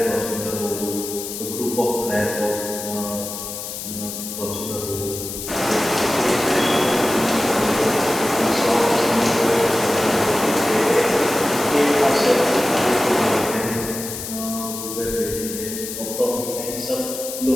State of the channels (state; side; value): noise; left; hiss, 8 dB below the sound